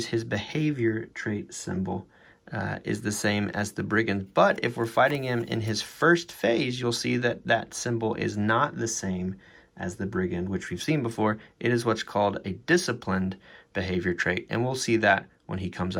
his behavior trait symbol. Is the same as the brigand, but if we're fighting him in his first phase, you'll see that that symbol is not the same as the brigand, which we've seen before. It is what's called a disciplined behavior trait, and we'll see that when he comes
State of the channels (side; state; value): both; identical; correlation 1.00